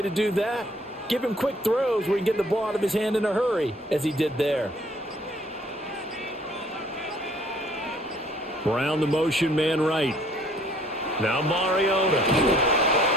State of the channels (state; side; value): normal; both; correlation 0.59